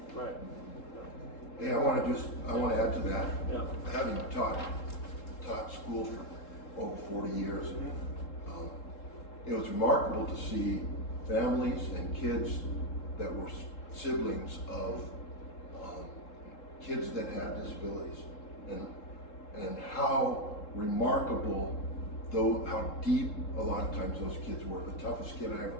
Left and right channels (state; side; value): late; right; 3.7 ms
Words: right. Hey, I want to add to that. Yeah. Having taught school for over 40 years, it was remarkable to see families and kids that were siblings of kids that had disabilities, and how remarkable, though, how deep a lot of times those kids were. The toughest kid I ever